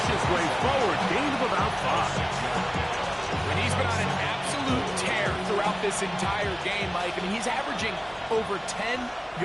his way forward, gain of about 5. When he's been on an absolute tear throughout this entire game, Mike, I mean, he's averaging over 10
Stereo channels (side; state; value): both; identical; correlation 1.00